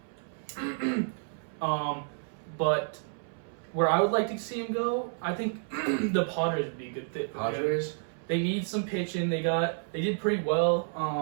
But where I would like to see him go, I think the Padres would be a good fit for him. Padres? They need some pitching. They did pretty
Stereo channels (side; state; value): left; silent; 58 dB below the other